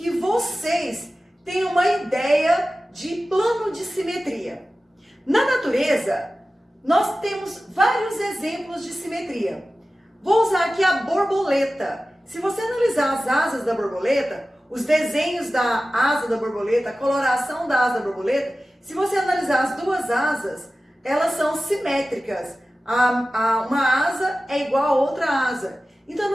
vocês tenham uma ideia de plano de simetria. Na natureza, nós temos vários exemplos de simetria. Vou usar aqui a borboleta. Se você analisar as asas da borboleta, os desenhos da asa da borboleta, a coloração da asa da borboleta, se você analisar as duas asas, elas são simétricas. Uma asa é igual a outra asa. Então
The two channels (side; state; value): both; normal; correlation 0.95